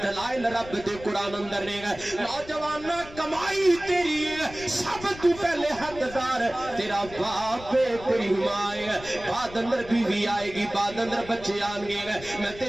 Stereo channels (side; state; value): left; noise; rumble, 16 dB below the sound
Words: دلائل رب دے قرآن اندر نہیں ہے۔ نوجوان کمائی تیری ہے سب تو پہلے حقدار تیرا باپ ہے تیری ماں ہے، بعد اندر بیوی آئے گی بعد اندر بچے آن گے، میں